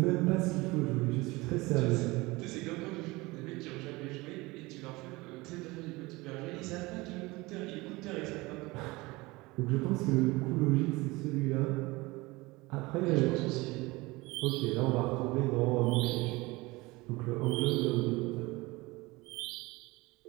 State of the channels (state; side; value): quieter; left; 22.3 dB